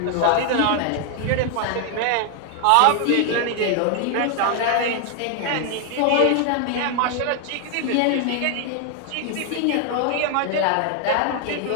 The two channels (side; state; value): both; different; correlation 0.00